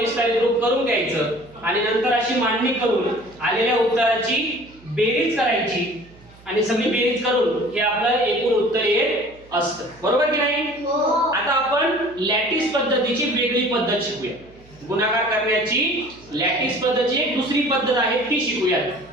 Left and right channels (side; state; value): right; noise; hum, 25 dB below the sound